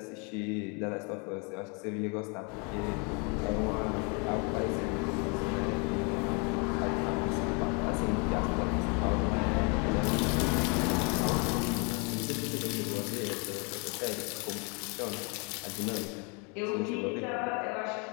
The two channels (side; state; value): right; quieter; 33.4 dB